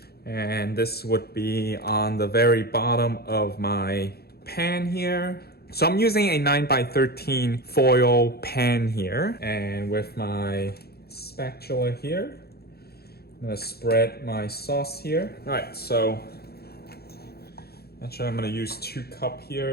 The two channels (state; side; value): late; right; 0.46 ms